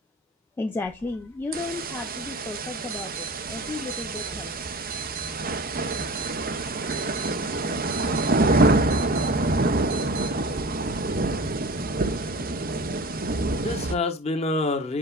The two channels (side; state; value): both; normal; correlation 0.37